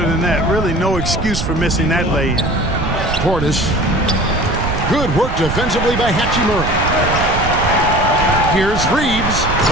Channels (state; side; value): noise; right; rumble, 4 dB below the sound